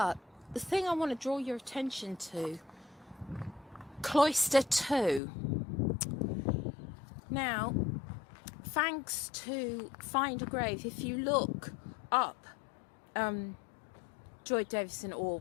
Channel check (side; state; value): right; drops out; at 5.2 s